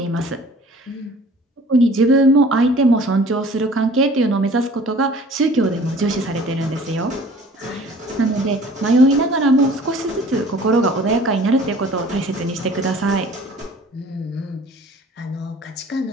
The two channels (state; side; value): normal; both; correlation 0.49